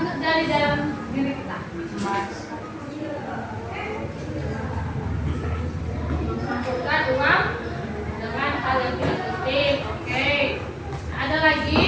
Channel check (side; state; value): both; identical; correlation 1.00